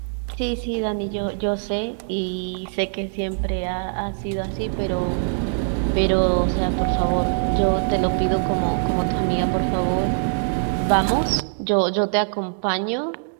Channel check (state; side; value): silent; left; digital silence